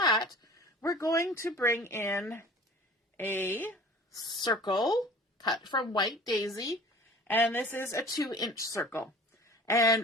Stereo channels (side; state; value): both; normal; correlation 0.43